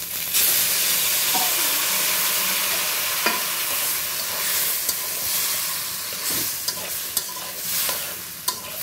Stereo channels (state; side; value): identical; both; correlation 1.00